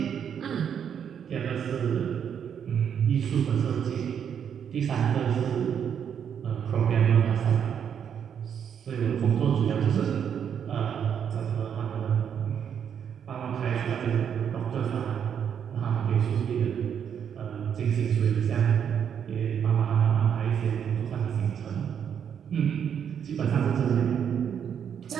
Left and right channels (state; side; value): quieter; left; 8.2 dB